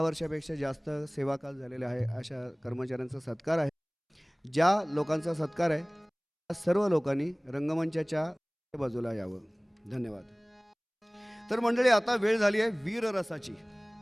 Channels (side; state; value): both; identical; correlation 1.00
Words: वर्षापेक्षा जास्त सेवाकाल झालेले आहे अशा कर्मचाऱ्यांचा सत्कार आहे. ज्या लोकांचा सत्कार आहे त्या सर्व लोकांनी रंगमंचाच्या बाजूला यावं. धन्यवाद. तर मंडळी, आता वेळ झाली आहे वीररसाची.